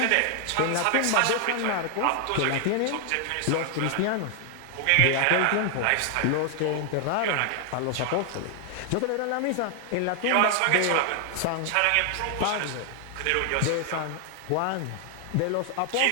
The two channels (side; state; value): both; different; correlation 0.00